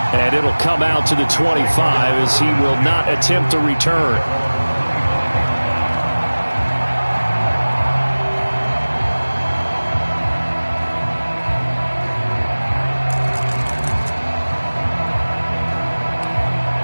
And it'll come out to the 25 as he will not attempt a return.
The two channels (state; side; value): inverted; both; correlation -1.00